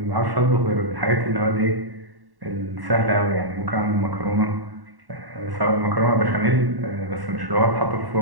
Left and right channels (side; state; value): left; late; 1.1 ms